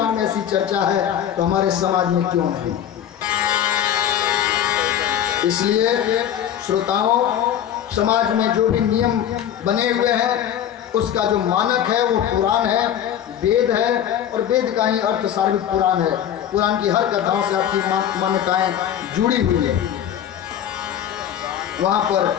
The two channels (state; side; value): quieter; right; 10.0 dB